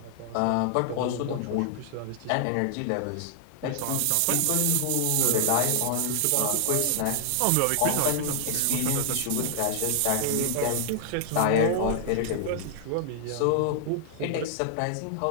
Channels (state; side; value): different; both; correlation 0.00